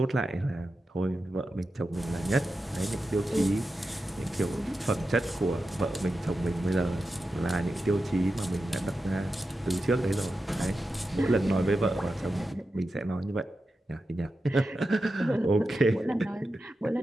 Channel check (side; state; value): both; normal; correlation 0.91